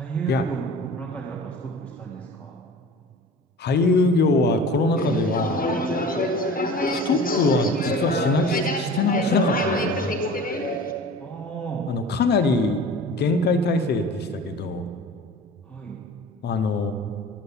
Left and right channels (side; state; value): both; normal; correlation 0.40